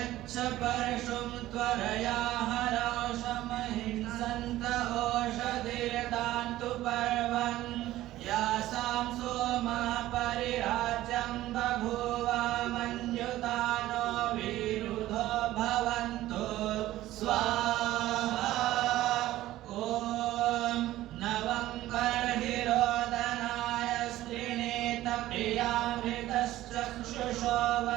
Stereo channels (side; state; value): left; quieter; 15.2 dB